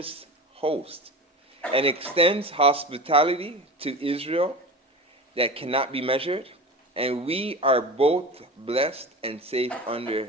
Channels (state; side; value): normal; both; correlation 0.31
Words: host, and extends hospitality to Israel that cannot be measured, and we are both blessed and safe under